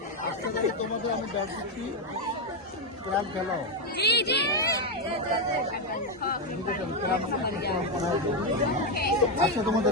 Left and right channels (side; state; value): both; normal; correlation 0.05